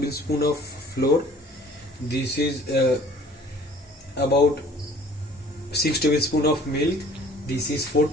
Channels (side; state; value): both; normal; correlation 0.51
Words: of flour. This is about 6 tablespoon of milk. This is 4